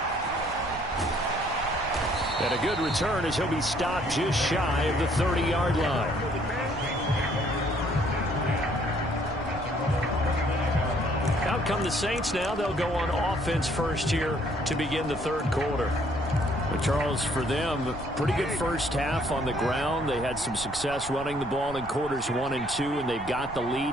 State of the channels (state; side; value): noise; right; rumble, 14 dB below the sound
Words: And a good return as he'll be stopped just shy of the 30-yard line. Out come the Saints now. They'll go on offense first here to begin the third quarter. But Charles, for them, pretty good first half on the ground. They had some success running the ball in quarters 1 and 2, and they've got the